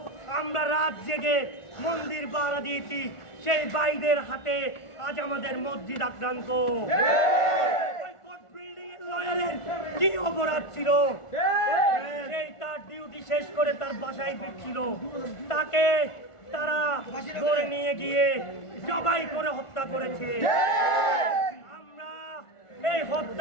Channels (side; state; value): right; late; 1.4 ms